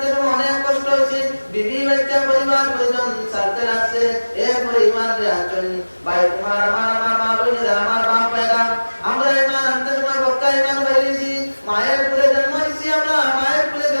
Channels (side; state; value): both; inverted; correlation -1.00